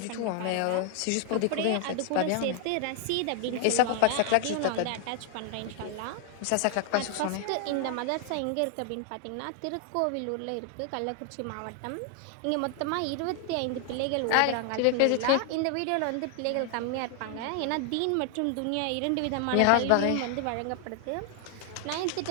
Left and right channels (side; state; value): both; different; correlation 0.00